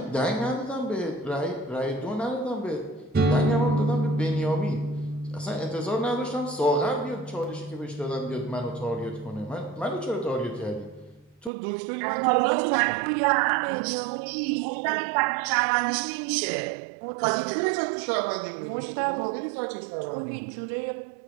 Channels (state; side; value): drops out; left; at 11.5 s